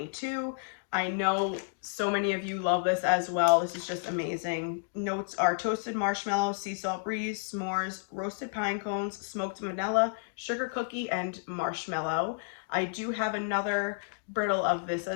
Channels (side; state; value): right; silent; digital silence